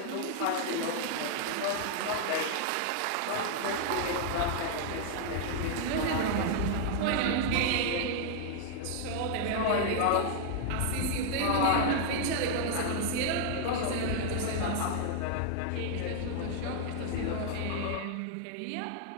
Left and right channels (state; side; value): different; both; correlation 0.00